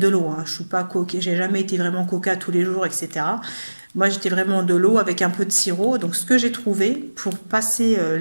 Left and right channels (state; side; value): inverted; both; correlation -1.00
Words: l'eau, hein. Je suis pas coquée, j'ai jamais été vraiment coca tous les jours, etc. Moi, j'étais vraiment de l'eau avec un peu de sirop. Donc, ce que j'ai trouvé pour passer